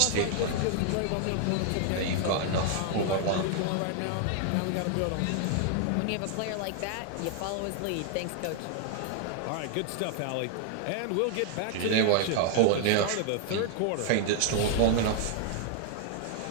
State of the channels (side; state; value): both; different; correlation 0.00